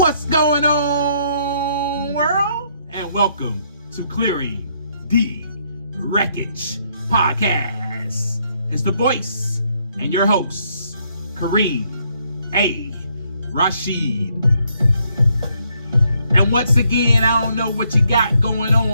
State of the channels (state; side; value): inverted; both; correlation -0.71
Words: going on, world? And welcome to Clearing the Wreckage Podcast. It's the voice and your host, Kareem A. Rashid. And once again, I don't know what you got going